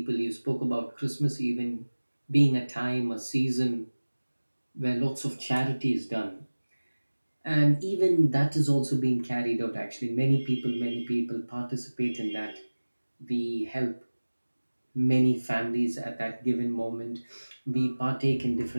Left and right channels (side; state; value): both; inverted; correlation -1.00